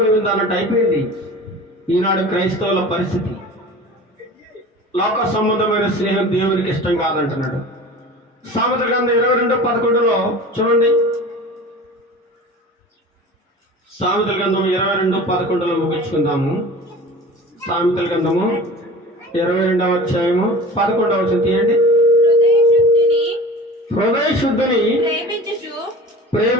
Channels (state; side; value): normal; both; correlation 0.38